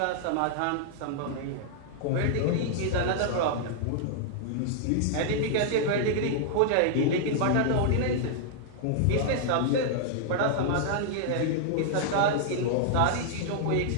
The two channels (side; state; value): both; different; correlation -0.01